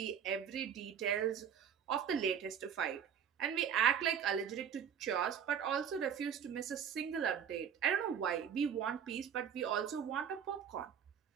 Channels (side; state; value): left; quieter; 8.1 dB